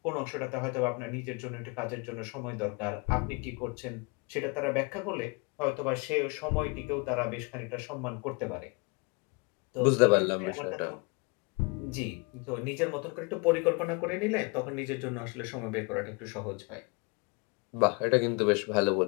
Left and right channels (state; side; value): quieter; right; 30.4 dB